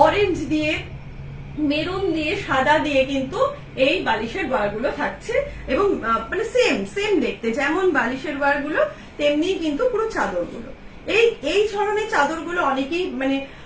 অরেঞ্জ দিয়ে, মেরুন দিয়ে, সাদা দিয়ে কিন্তু এই বালিশের ওয়ারগুলো থাকছে এবং মানে সেম দেখতে, যেমন বালিশের ওয়ারগুলো তেমনি কিন্তু পুরো চাদরগুলো। এই ধরনের চাদরগুলো অনেকেই মানে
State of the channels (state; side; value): identical; both; correlation 1.00